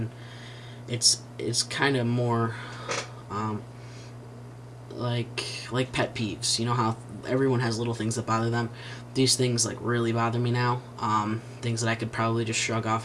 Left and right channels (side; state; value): both; identical; correlation 1.00